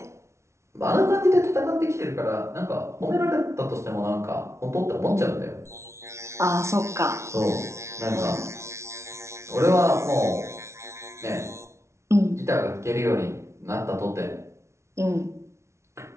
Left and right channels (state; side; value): late; left; 0.13 ms